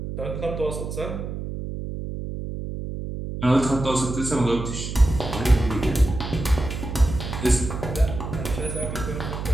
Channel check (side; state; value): right; noise; hum, 6 dB below the sound